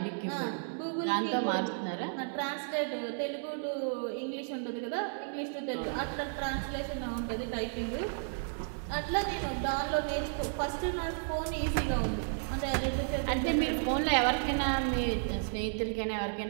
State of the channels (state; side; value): silent; left; 56 dB below the other